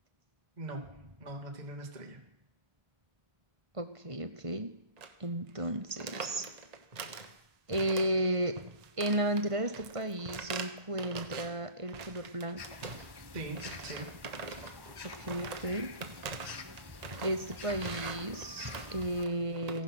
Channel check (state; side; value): late; left; 1.5 ms